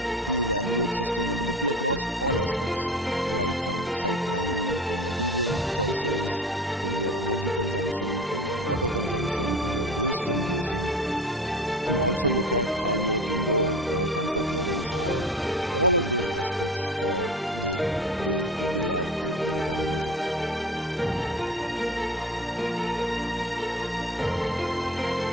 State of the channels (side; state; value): both; normal; correlation 0.34